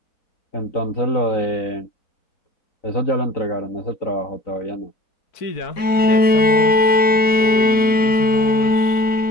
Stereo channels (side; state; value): right; late; 4.1 ms